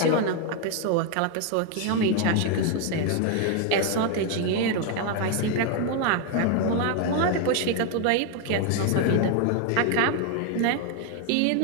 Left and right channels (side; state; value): both; different; correlation 0.01